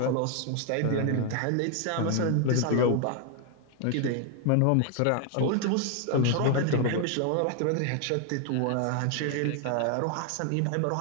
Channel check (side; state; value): both; different; correlation 0.00